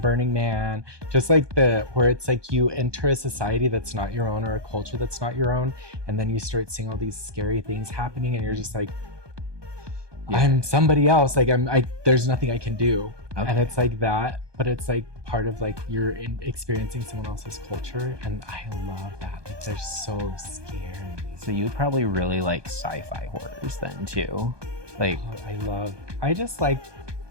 Man, just like where it's like you enter a society that's not your own, or a culture that's not your own, and then you start seeing all these scary things happening, and you're just like, I'm somebody else. Like, there's nothing I can do. Okay. And it's like that, but it's like part of like you're experiencing someone else's culture, and I love that. Like, they're so scary. So you'd probably really like sci-fi horrors then too. Like, I just like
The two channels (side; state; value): left; late; 1.2 ms